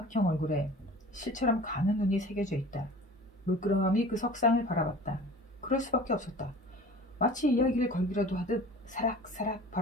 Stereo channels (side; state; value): both; normal; correlation 0.42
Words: 얼굴에 실처럼 가는 눈이 새겨져 있다. 물끄러미 그 석상을 바라봤다. 그럴 수밖에 없었다. 마치 이야기를 걸기라도 하듯 사락사락